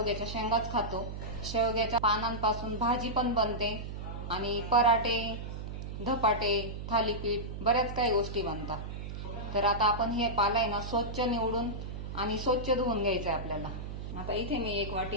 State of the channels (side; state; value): right; noise; hum, 7 dB below the sound